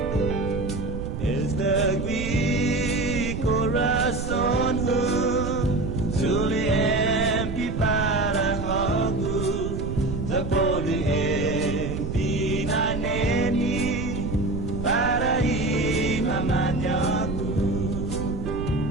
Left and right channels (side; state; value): right; noise; rumble, 5 dB below the sound